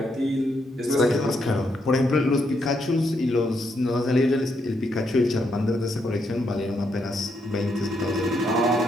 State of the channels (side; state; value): both; normal; correlation 0.77